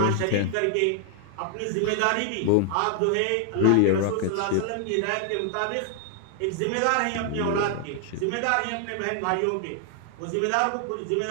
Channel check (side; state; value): both; different; correlation 0.00